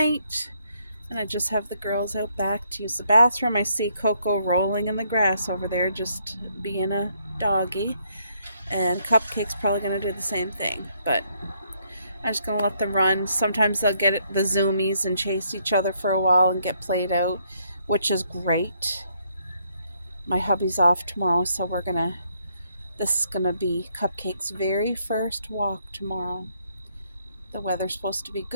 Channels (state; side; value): inverted; both; correlation -0.72